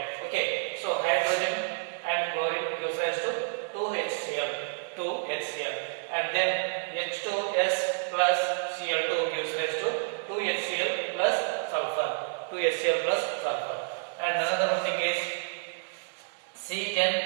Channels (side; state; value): left; silent; digital silence